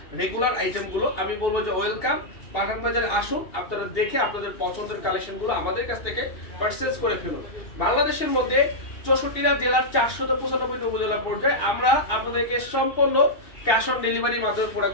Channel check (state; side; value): late; right; 2.7 ms